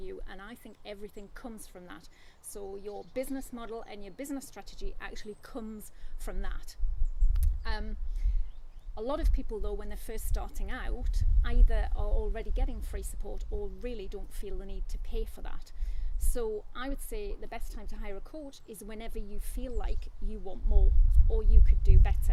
and I think everything comes from that. So your business model and your business strategy actually comes from that. A lot of people, though, when they're first starting out, either are already getting free support or really don't feel the need to pay for that. So I would say the best time to hire a coach is whenever you feel like you want more or you could do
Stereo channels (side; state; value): both; identical; correlation 1.00